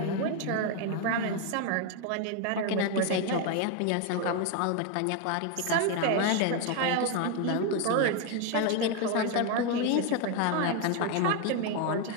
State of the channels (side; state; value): both; different; correlation 0.01